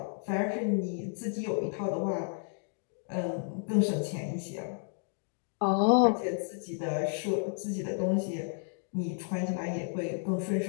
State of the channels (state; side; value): silent; right; 56 dB below the other